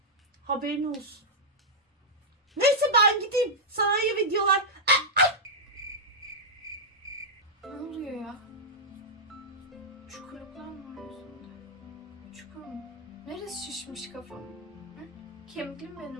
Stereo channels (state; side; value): normal; both; correlation -0.07